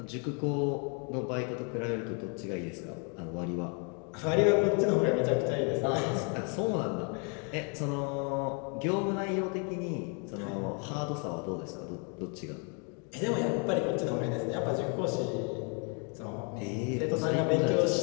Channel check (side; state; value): right; quieter; 37.2 dB